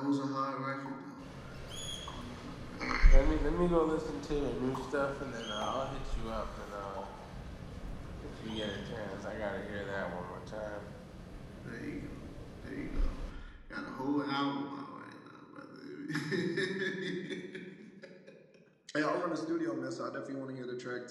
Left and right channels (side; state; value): both; identical; correlation 1.00